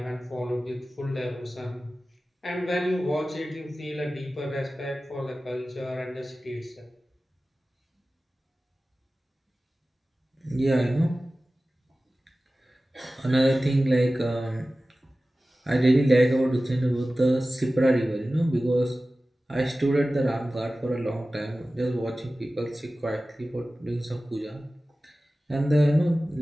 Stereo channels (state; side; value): normal; both; correlation 0.96